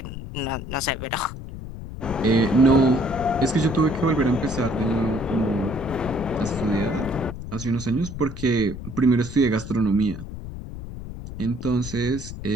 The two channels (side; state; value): left; noise; rumble, 10 dB below the sound